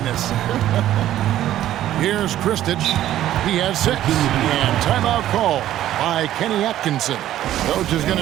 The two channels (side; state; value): left; quieter; 12.8 dB